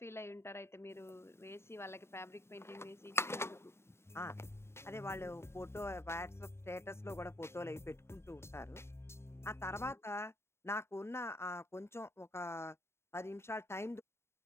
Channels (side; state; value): right; late; 0.12 ms